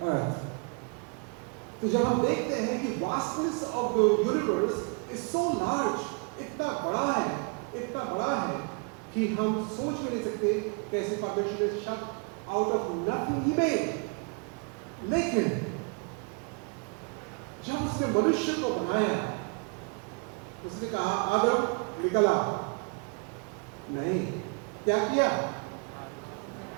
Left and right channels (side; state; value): left; quieter; 34.4 dB